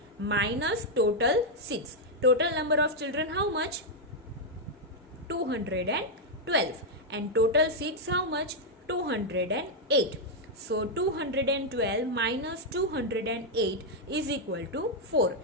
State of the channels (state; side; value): normal; both; correlation -0.01